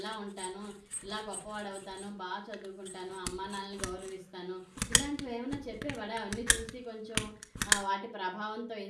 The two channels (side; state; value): both; identical; correlation 1.00